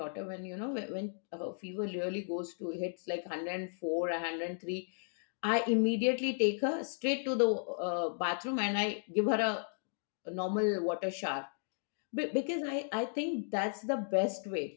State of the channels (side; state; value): right; silent; digital silence